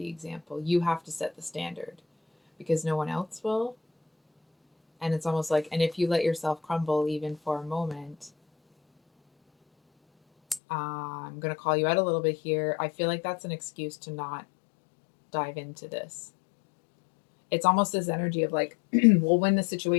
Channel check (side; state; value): right; drops out; at 10.6 s